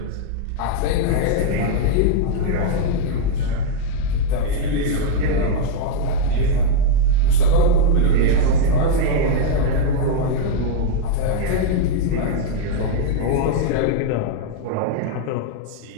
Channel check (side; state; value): both; different; correlation -0.01